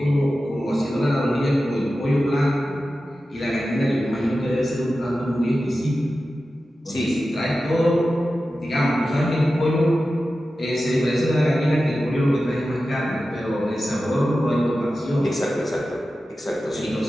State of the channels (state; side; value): normal; both; correlation 0.93